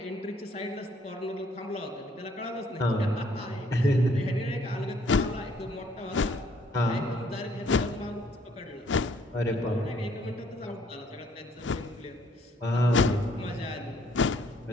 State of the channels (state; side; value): normal; both; correlation 0.63